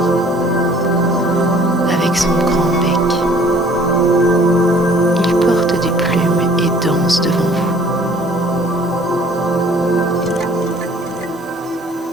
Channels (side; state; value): both; normal; correlation 0.55